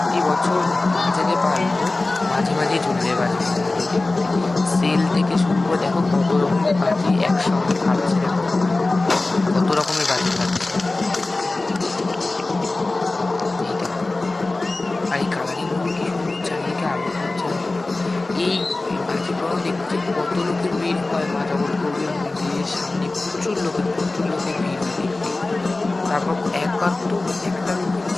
বছর মাঝে পারবো, মাঝে মাঝেই চলে যায় বাজি। সেল থেকে শুরু করে দেখো কত রকমের বাজি একসঙ্গে খাচ্ছে, কত রকমের বাজি খাচ্ছে। আর এই কালারিং চারিদিকে আলো হচ্ছে। এই বাজি পোড়ানো দেখতে কত লোকের ভিড় হয় মা জগৎগৌরীর মন্দিরের সামনে, প্রচুর লোকের ভিড় হয়। তারপর একবার তো একটা লোকের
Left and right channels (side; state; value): right; quieter; 3.1 dB